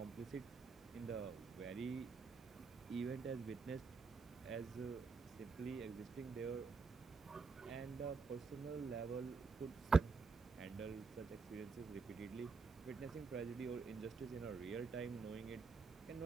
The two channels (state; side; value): quieter; left; 4.7 dB